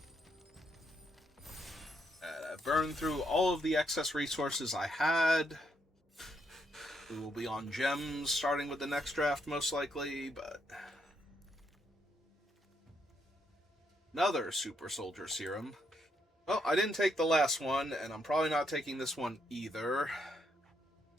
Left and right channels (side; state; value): both; normal; correlation 0.76